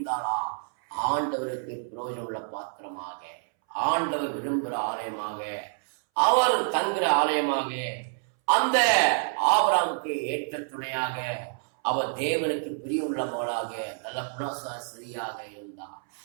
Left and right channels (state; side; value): silent; left; 59 dB below the other